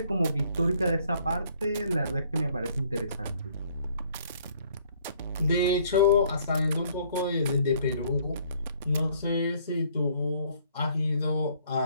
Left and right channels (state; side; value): inverted; both; correlation -0.62